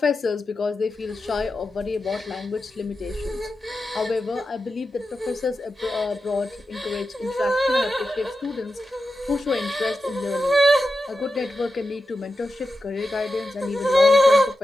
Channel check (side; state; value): both; normal; correlation 0.91